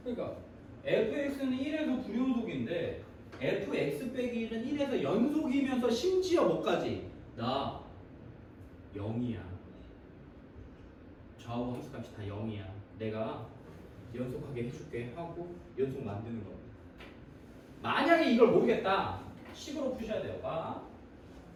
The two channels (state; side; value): identical; both; correlation 1.00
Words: 그러니까 fx는 1에서 불연속인데 fx 빼기 1은 1에서 연속이면서 심지어 뭐까지? 나 0이야. 좌우 함수값이 다 0이야. 내가 연속하게 해줄게 하고 연속 만드는 겁니다. 만약에 이걸 모르겠다. 식으로 푸셔야 돼요. 봐.